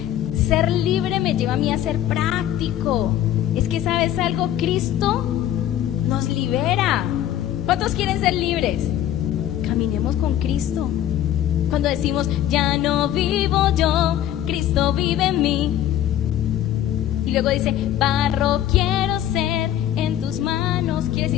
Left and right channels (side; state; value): right; quieter; 11.7 dB